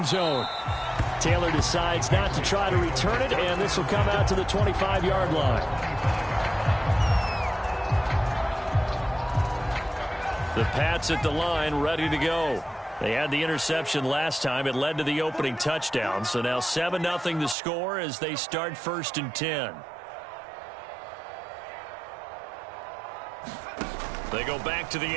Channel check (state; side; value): drops out; left; at 17.6 s